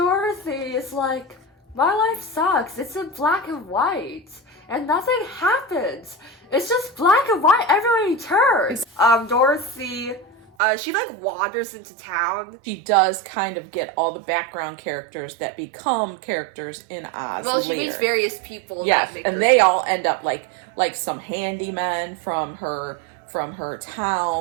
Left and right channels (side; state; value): left; drops out; at 10.5 s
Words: is like, my life sucks. It's in black and white. And nothing happens. It's just black and white everywhere you turn. Dorothy, she like wanders into town. She does kind of get all the background characters that become characters in Oz. Well, she meets various people. Yes, and they all end up like some handymen from her